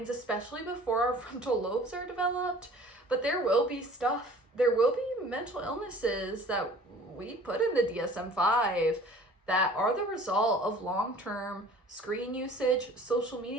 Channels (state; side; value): normal; both; correlation 0.48